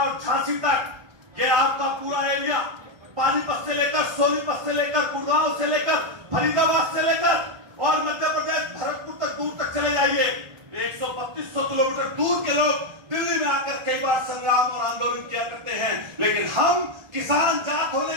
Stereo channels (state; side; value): late; left; 1.3 ms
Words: झांसी तक। ये आपका पूरा एरिया पानीपत से लेकर, सोनीपत से लेकर, गुड़गांव से लेकर, फरीदाबाद से लेकर, और मध्य प्रदेश भरतपुर तक, दूर तक चले जाइए। 132 किलोमीटर दूर के लोग दिल्ली में आकर कई बार संग्राम और आंदोलन किया करते हैं। लेकिन हम किसान जात होने